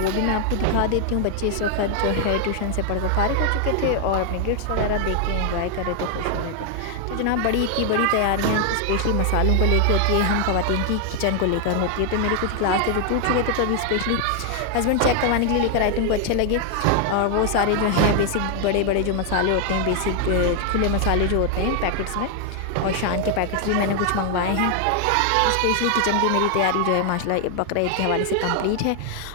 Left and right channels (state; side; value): different; both; correlation 0.00